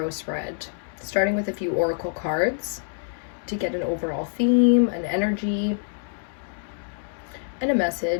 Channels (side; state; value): right; silent; digital silence